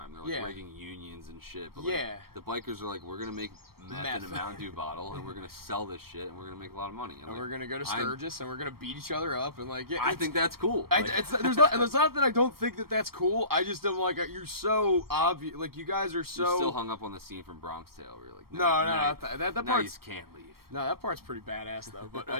They're like Yeah. rigging unions and shit. But Yeah. like, the bikers are like, we're gonna make meth in a Mountain Dew bottle and we're gonna sell this shit and we're gonna make a lot of money. And we're gonna go to Sturgis and we're gonna beat each other up and like yeah. I think that's cool. It's not that I don't think that that's cool. I just am like you're so obvious. Like you guys are so. You're still hung up on the scene from Bronx Tale where you're like, No, now that you part's can't leave. no, that part's pretty badass though. But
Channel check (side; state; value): left; late; 0.94 ms